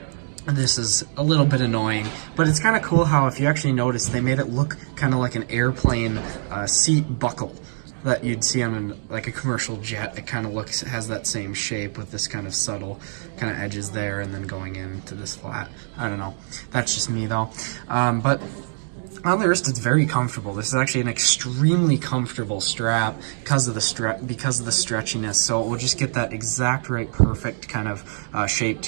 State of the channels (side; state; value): left; silent; 63 dB below the other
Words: this is a little bit annoying, but it's kind of cool how, if you actually notice, they made it look kind of like an airplane seat buckle that you'd see on like a commercial jet. It kind of has that same shape with this kind of subtle kind of edges there, and then going into this flat. I don't know. That's just me though. But on the wrist, it's very comfortable. This is actually an extremely comfortable strap because of the stretchiness. So it will just get that exact right, perfect kind of shape